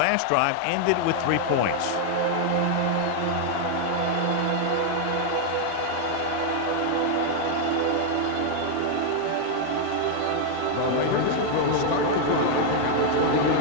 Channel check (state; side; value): different; both; correlation 0.00